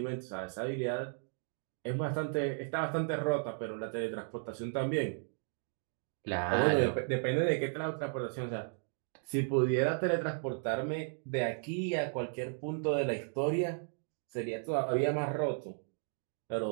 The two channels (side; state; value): left; silent; 55 dB below the other